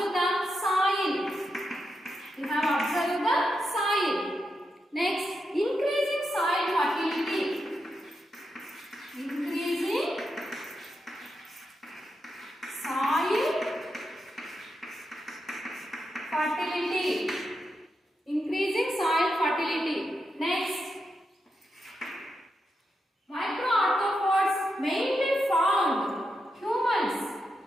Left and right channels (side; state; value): both; normal; correlation 0.85